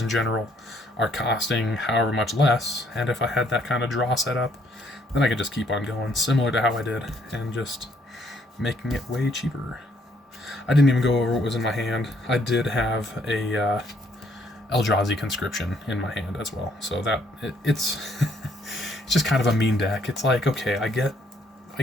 general are costing however much less, and if I had that kind of draw set up, then I could just keep on going, similar to how I did, and just making it way cheaper. I didn't even go over what was in my hand. I did have a Eldrazi conscription in my hand as well, so that it's it's just kind of a mean deck. It's like, okay, I get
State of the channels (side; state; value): both; normal; correlation 0.68